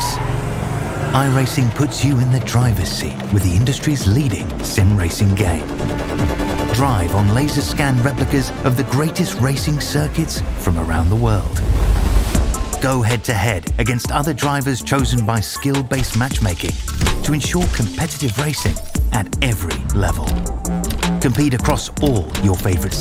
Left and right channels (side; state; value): both; identical; correlation 1.00